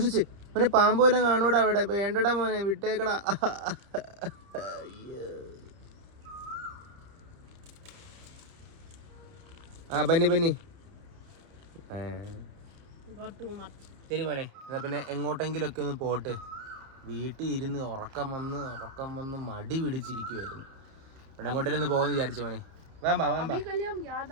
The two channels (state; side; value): late; left; 30 ms